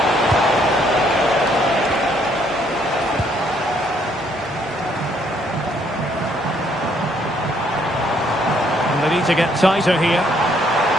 And they need to get tighter here.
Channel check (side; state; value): both; normal; correlation 0.68